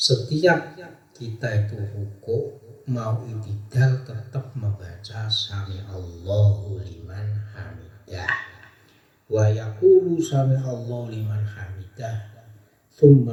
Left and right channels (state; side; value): identical; both; correlation 1.00